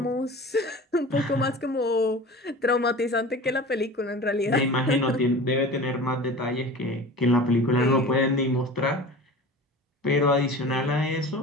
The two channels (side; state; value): both; normal; correlation 0.37